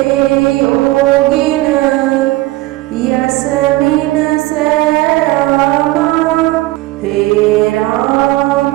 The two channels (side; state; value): left; quieter; 18.8 dB